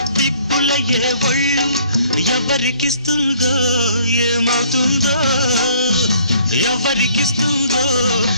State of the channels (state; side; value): inverted; both; correlation -0.59